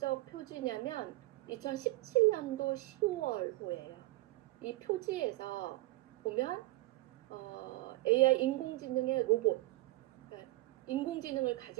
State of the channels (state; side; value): quieter; left; 19.1 dB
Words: 표지냐면 2017년도 10월호예요. 이 표지에서 보면 AI 인공지능의 로봇, 그러니까 인공지능을